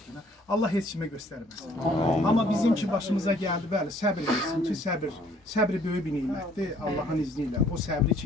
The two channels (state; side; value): normal; both; correlation 0.60